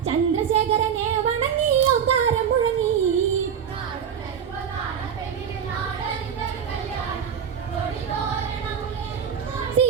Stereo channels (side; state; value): left; quieter; 7.9 dB